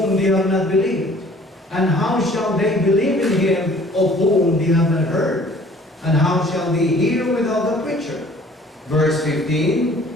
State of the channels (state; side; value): normal; both; correlation 0.53